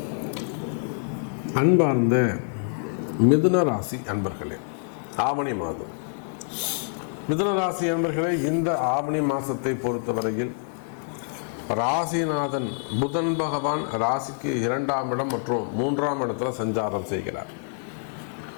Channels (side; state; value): right; silent; digital silence